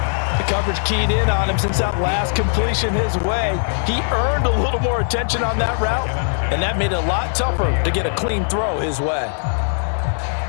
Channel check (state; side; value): silent; right; digital silence